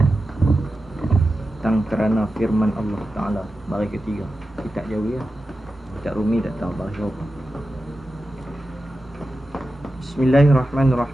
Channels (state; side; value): normal; both; correlation 0.92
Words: tentang kerana firman Allah Ta'ala, baris ketiga. Kitab Jawi lah, kitab Rumi tak tahu baris berapa.